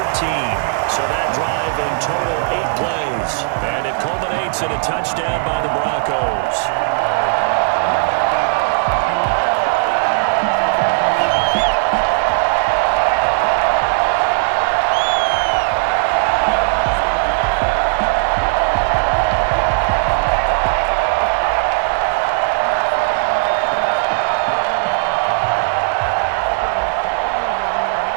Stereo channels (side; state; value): left; silent; digital silence